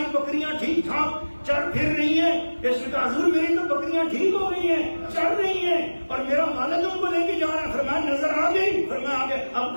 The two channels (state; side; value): inverted; both; correlation -1.00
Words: بکریاں ٹھیک ٹھاک چل پھر رہی ہیں۔ اس نے کہا حضور میری تو بکریاں ٹھیک ہو رہی ہیں، چل رہی ہیں، اور میرا والد ان کو لے کے جا رہا ہے۔ فرمایا نظر آ گئی؟ فرمایا آ گئے۔